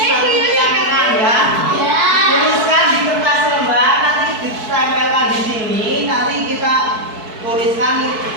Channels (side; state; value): left; late; 4.6 ms